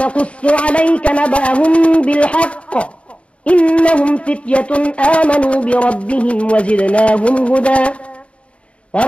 عليك نبأهم بالحق إنهم فتية آمنوا بربهم وزدناهم هدى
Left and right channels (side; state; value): right; late; 0.062 ms